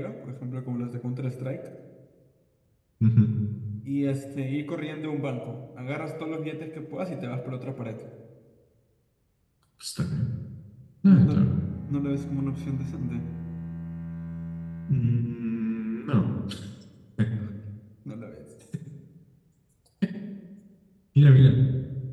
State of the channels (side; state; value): both; identical; correlation 1.00